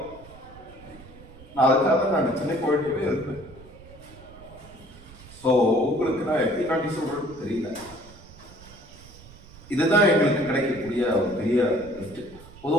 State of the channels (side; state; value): right; noise; rumble, 20 dB below the sound